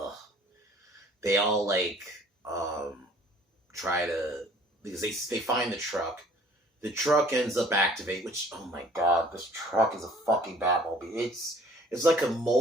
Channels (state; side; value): normal; both; correlation 0.55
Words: They all, like, try to, because they find the truck. The truck ends up activate, which, oh my god, this truck is a fucking Batmobile. It's like a